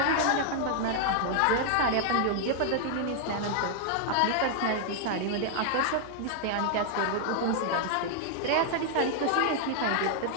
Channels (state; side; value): different; both; correlation 0.00